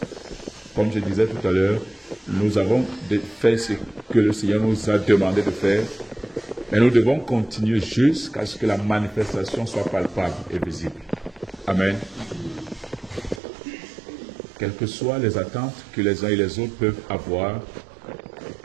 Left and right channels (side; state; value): left; drops out; at 13.4 s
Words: Comme je disais tout à l'heure, nous avons fait ce que le Seigneur nous a demandé de faire, mais nous devons continuer jusqu'à ce que la manifestation soit palpable et visible. Amen. Quelles que soient les attentes que les uns et les autres peuvent avoir,